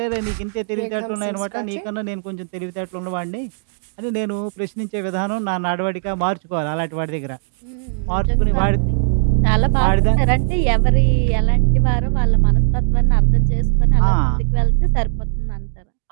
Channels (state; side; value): silent; left; digital silence